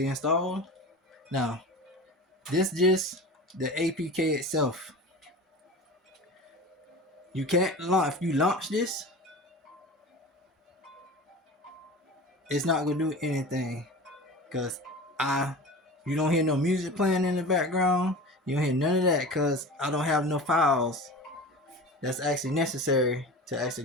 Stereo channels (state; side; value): normal; both; correlation 0.34